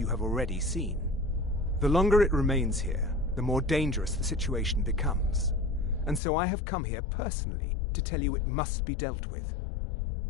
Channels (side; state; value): right; drops out; at 6.2 s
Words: have already seen. The longer it remains here, the more dangerous the situation becomes. And so I have come here personally to tell you it must be dealt with.